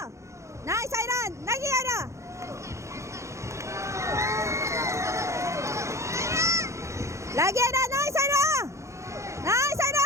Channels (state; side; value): late; left; 0.14 ms